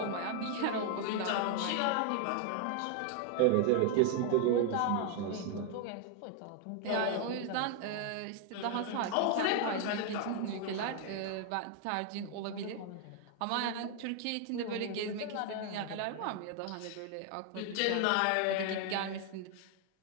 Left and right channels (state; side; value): different; both; correlation 0.00